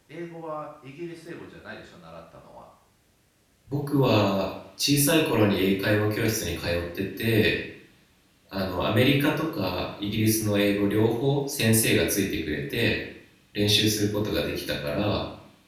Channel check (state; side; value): identical; both; correlation 1.00